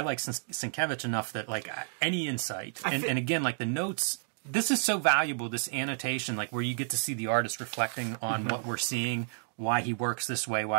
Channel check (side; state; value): left; silent; 57 dB below the other